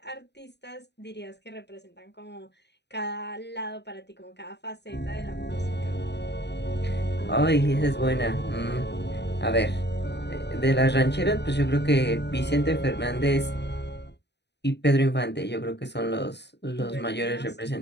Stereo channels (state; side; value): late; right; 0.50 ms